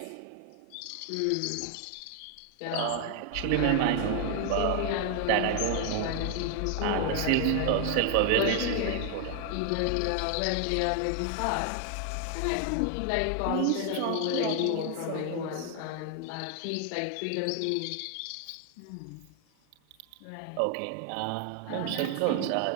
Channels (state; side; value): different; both; correlation 0.00